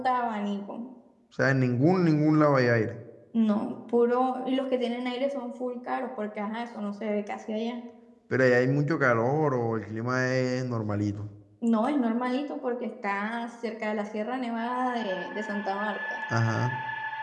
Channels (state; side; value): identical; both; correlation 1.00